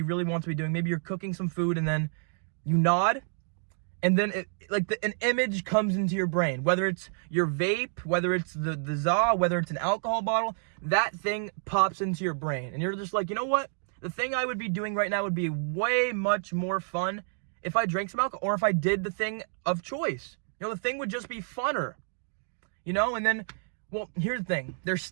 really want to be doing. Maybe you're cooking some food and then you nod, and then an image comes into your brain, whether it's your vape, whether it's the za, whether it's an alcohol bottle, that thing pops into your brain. And you're just like, you know what? The thing I would be doing right now would be way much more fun if I drank some alcohol, or if I did the thing of choice. The thing would just be funner. And then, well, here's the thing. There's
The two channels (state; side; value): silent; left; digital silence